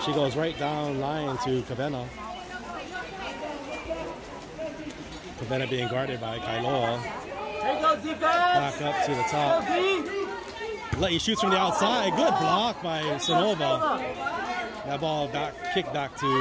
She goes right down line to Kavena. Kavena being guarded by Kailoa. Here goes defense. Back up to the top. La'i shoots from the outside. Good block by Sonova. That ball kicked back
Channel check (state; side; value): identical; both; correlation 1.00